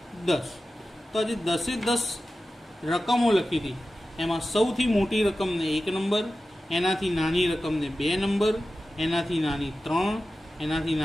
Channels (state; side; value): normal; both; correlation 0.94